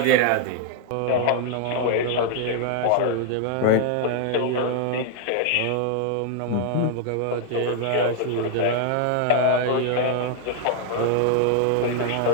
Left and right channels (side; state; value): both; different; correlation 0.00